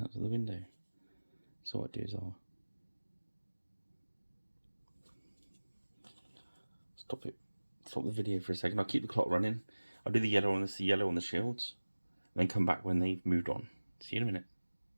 out of the window. So what I do is I'll stop the video for a second. I'll keep the clock running. I'll do the yellow on the shields, and then come back when they've moved on. See you in a minute.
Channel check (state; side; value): inverted; both; correlation -1.00